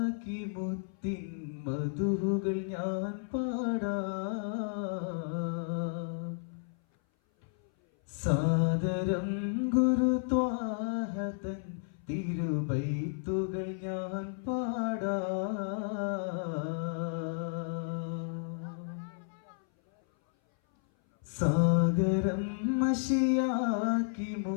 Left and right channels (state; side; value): silent; right; 56 dB below the other